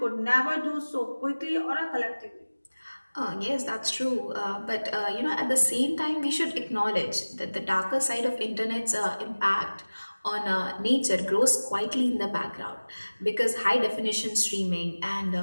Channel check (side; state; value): both; inverted; correlation -1.00